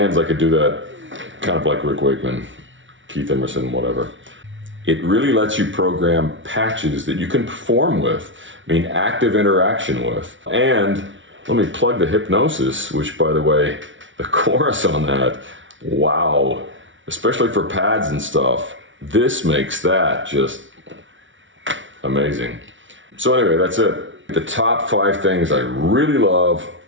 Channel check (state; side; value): late; left; 0.56 ms